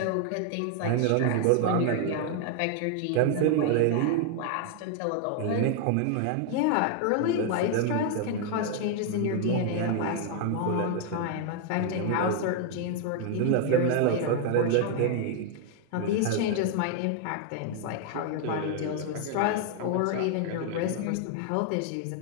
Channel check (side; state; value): both; different; correlation 0.00